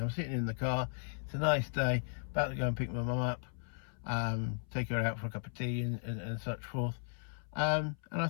I'm sitting in the car. It's a nice day. About to go and pick my mum up. Take her out for a cup of tea and such forth. And I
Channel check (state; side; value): silent; right; 54 dB below the other